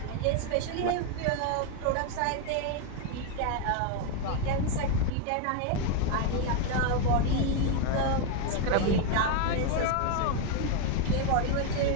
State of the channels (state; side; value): different; both; correlation 0.01